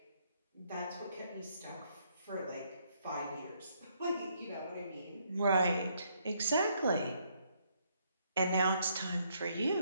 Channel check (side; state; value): both; inverted; correlation -0.71